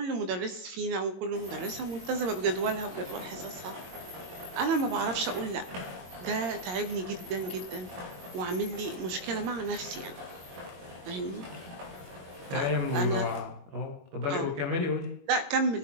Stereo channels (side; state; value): left; late; 22 ms